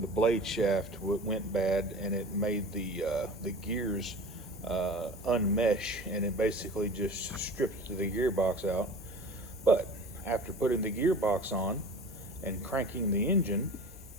blade shaft went bad, and it made the gears unmesh, and it basically just stripped the gearbox out. But after putting the gearbox on and cranking the engine,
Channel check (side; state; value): both; normal; correlation 0.38